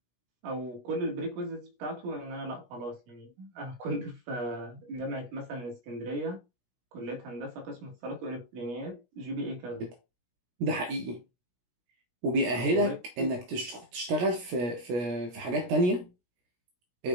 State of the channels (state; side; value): late; left; 16 ms